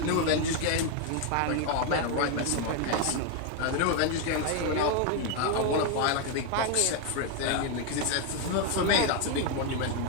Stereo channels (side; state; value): both; different; correlation 0.01